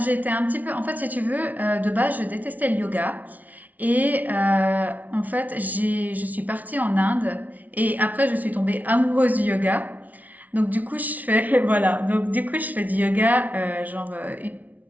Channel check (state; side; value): late; left; 0.075 ms